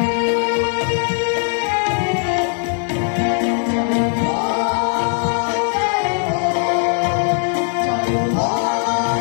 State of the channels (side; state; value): right; silent; 55 dB below the other